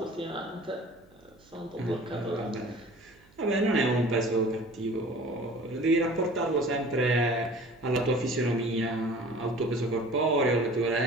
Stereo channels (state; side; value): noise; right; hum, 29 dB below the sound